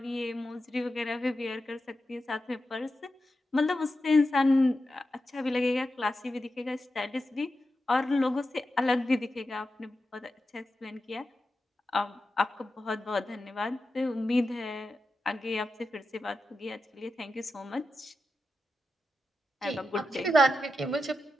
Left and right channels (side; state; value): both; normal; correlation 0.90